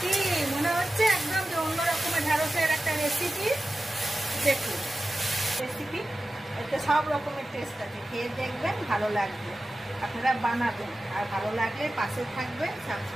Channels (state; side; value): normal; both; correlation 0.93